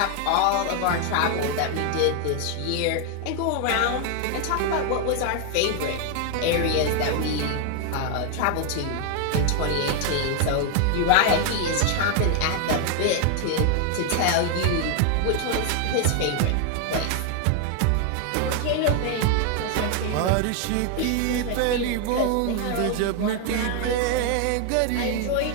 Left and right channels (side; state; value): both; different; correlation 0.00